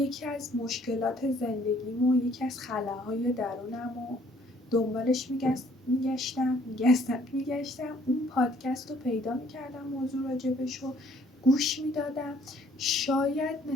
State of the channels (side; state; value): both; normal; correlation 0.61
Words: از مشکلات زندگیمو، یکی از خلاهای درونمو دنبالش میگشتم اون پادکست رو پیدا میکردم، موضوع راجبشو گوش میدادم. شاید